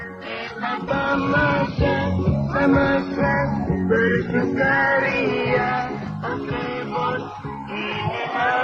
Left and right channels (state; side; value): identical; both; correlation 1.00